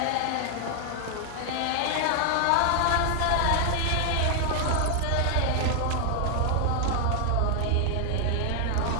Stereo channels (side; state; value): both; different; correlation 0.00